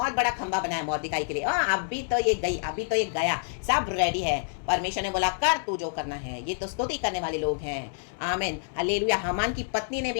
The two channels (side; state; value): right; silent; 59 dB below the other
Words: बड़ा खंबा बनाया मोर्देकाई के लिए। अभी तो ये गई, अभी तो ये गया, सब रेडी है। परमेश्वर ने बोला कर तू जो करना है। ये तो स्तुति करने वाले लोग हैं। आमीन हालेलुया। हामान की पत्नी ने भी